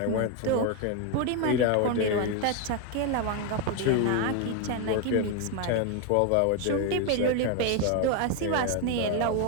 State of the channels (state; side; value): different; both; correlation 0.01